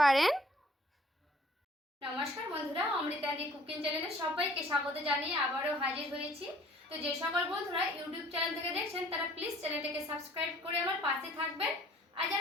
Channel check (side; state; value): both; normal; correlation 0.55